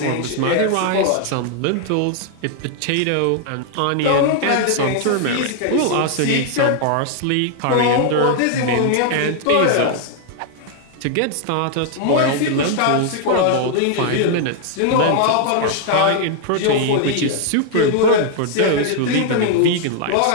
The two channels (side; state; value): both; different; correlation 0.00